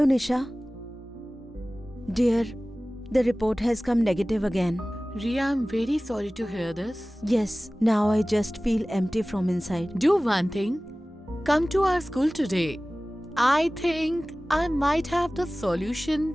Nisha. Dear, the report has come negative again. Ria, I'm very sorry to hear this. Yes, now I just feel empty from inside. Do one thing. Come to our school today. I think I might have the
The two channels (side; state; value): both; normal; correlation 0.98